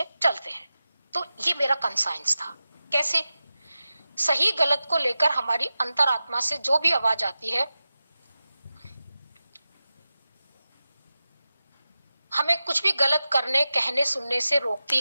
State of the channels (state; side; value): inverted; both; correlation -0.93